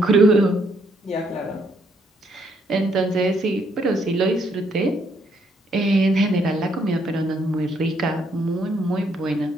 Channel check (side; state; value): both; normal; correlation 0.71